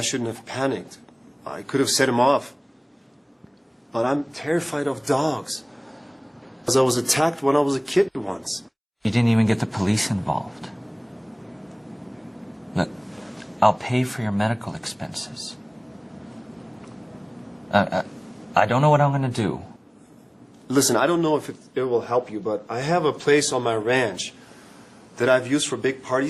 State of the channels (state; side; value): identical; both; correlation 1.00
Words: shouldn't have panicked. I could have set him off. But I'm terrified of dogs. Because I was attacked when I was a kid once. You didn't even get the police involved. Look, I'll pay for your medical expenses. I don't know what I'm going to do. Listen, I don't know if it will help you, but I have a place on my ranch that I've used for big